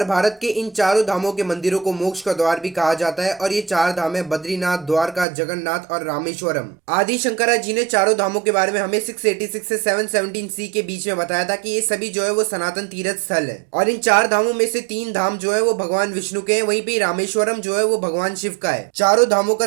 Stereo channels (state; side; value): drops out; left; at 5.2 s